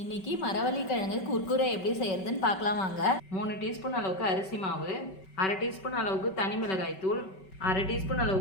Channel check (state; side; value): late; right; 5.2 ms